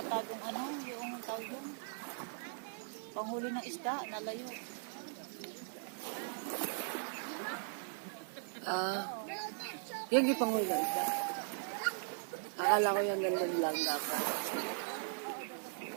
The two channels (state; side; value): silent; left; digital silence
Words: yung ano, yung tawag yun. Panghuli ng isda, nalayo. Yan yung pangulo isa. Akala ko yung ganun lang dapat.